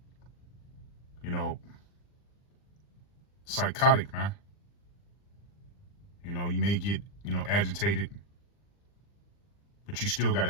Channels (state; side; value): late; right; 40 ms